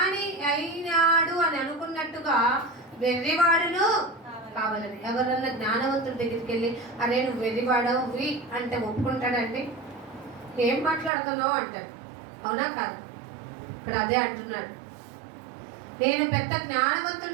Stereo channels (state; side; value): drops out; left; at 11.1 s